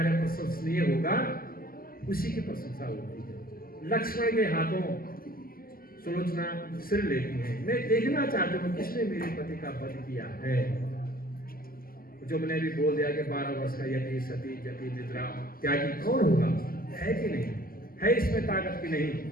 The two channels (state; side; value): late; right; 0.42 ms